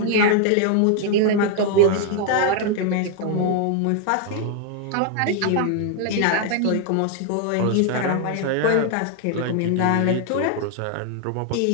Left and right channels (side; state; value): both; different; correlation 0.00